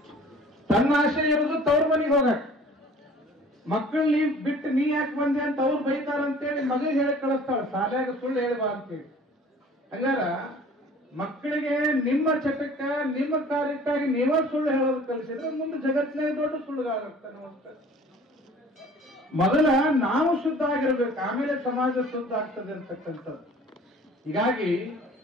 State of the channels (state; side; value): normal; both; correlation 0.49